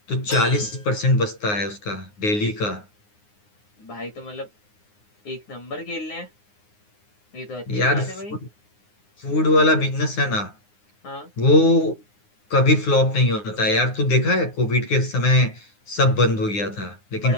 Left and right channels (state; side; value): late; right; 9.7 ms